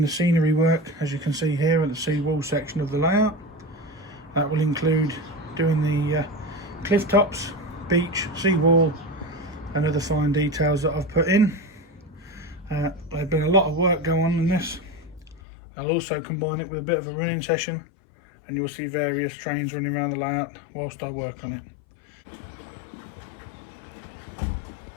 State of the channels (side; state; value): right; drops out; at 15.4 s